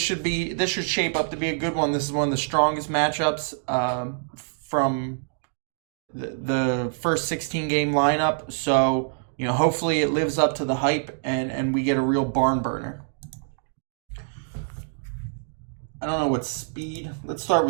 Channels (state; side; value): silent; left; digital silence